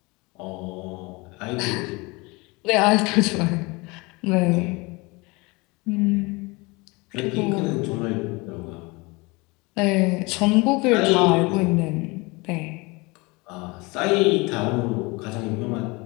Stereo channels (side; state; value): right; quieter; 25.7 dB